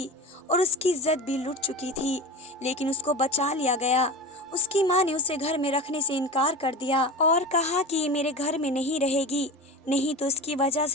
और उसकी इज्जत भी लुट चुकी थी, लेकिन उसको बचा लिया गया। उसकी माँ ने उसे घर में रखने से इनकार कर दिया और कहा कि ये मेरे घर में नहीं रहेगी, नहीं तो इसकी वजह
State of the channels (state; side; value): normal; both; correlation 0.29